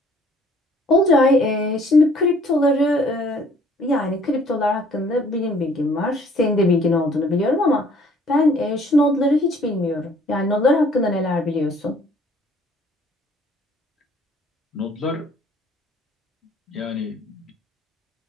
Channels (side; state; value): both; normal; correlation 0.58